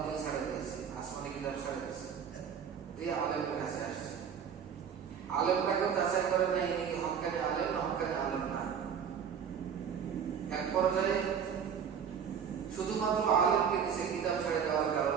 ছাড়ে দিয়েছে, আসমানি কিতাব ছাড়ে দিয়েছে, দিয়ে আলেমের কাছে আসছে। আলেমটাকে যাচাই করে নাই ইনি কি হক্কানি আলেম না হক্কানি আলেম না। এক পর্যায়ে শুধুমাত্র আলেমকে নিচে কিতাব ছেড়ে দেওয়ার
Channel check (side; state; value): left; quieter; 7.5 dB